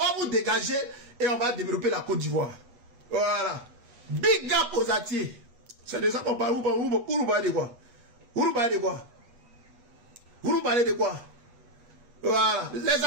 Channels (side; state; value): left; late; 8.2 ms